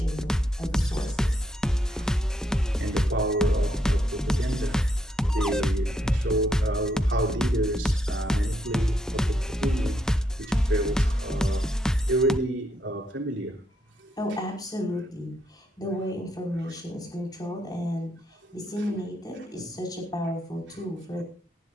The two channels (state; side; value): normal; both; correlation 0.77